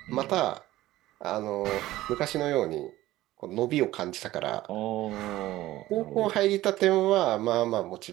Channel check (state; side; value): quieter; left; 16.1 dB